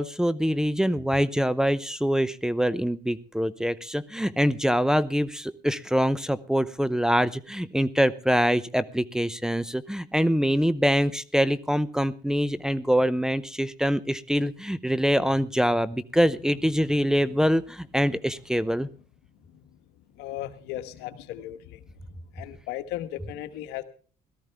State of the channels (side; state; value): both; normal; correlation 0.95